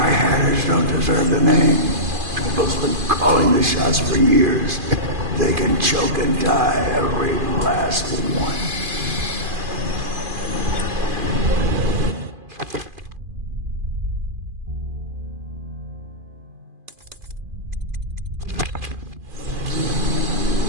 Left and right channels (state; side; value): late; left; 2.5 ms